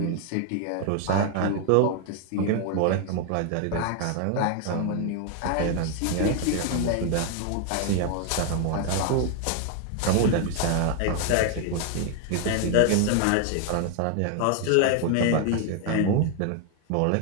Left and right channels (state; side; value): different; both; correlation 0.00